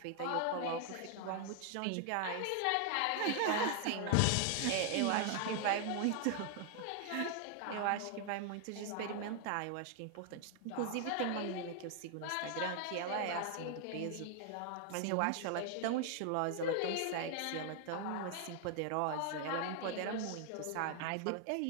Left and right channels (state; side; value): different; both; correlation 0.00